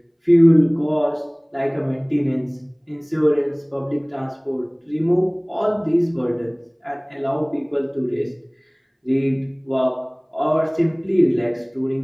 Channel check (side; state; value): both; identical; correlation 1.00